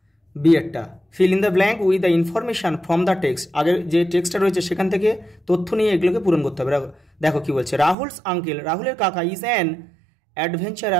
বিয়েরটা, fill in the blank with the information from the text, আগের যে টেক্সটটা রয়েছে সেখান থেকে তথ্য নিয়ে এগুলোকে পূরণ করতে হবে। দেখো কি বলছে, রাহুলস আঙ্কেল, রাহুলের কাকা ইজ অ্যান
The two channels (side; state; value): left; drops out; at 8.0 s